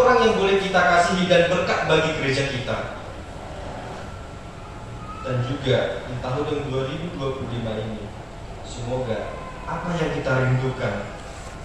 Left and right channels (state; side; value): identical; both; correlation 1.00